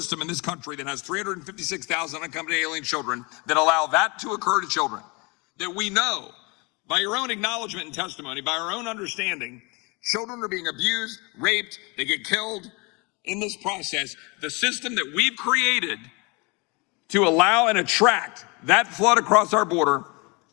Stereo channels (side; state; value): right; quieter; 28.9 dB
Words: in this country that has 356,000 unaccompanied alien children that allow that to occur to children? That we know, by your own acknowledgement and testimony, by our own understanding, children are being abused, raped, they get killed in this process. The system that we've created to allow and attract that flood across our border,